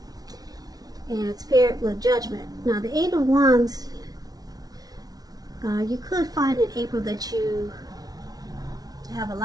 and it's paired with Judgment. Now the Eight of Wands, you could find in April that you have a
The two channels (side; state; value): left; late; 0.19 ms